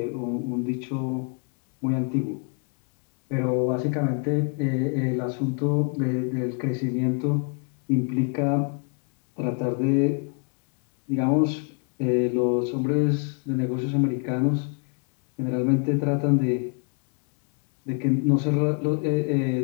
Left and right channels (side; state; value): right; quieter; 37.7 dB